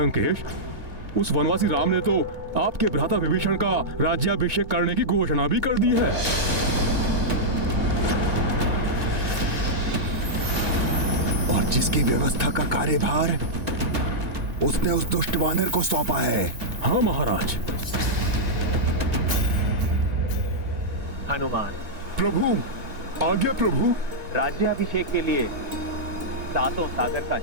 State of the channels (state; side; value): late; left; 2.2 ms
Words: उस वनवासी राम ने तो आपके भ्राता विभीषण का राज्याभिषेक करने की घोषणा भी कर दी है। और जिसकी व्यवस्था का कार्यभार उसने उस दुष्ट वानर को सौंपा है। हाँ महाराज। हनुमान, प्रभु, आज्ञा प्रभु। राज्याभिषेक के लिए सातों सागर का